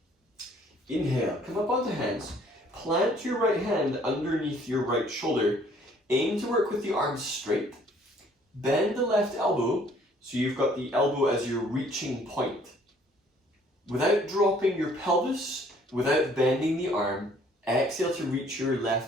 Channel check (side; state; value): both; normal; correlation 0.59